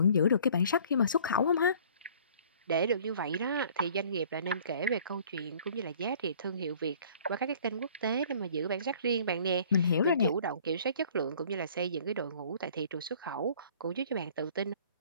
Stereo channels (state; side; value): inverted; both; correlation -0.53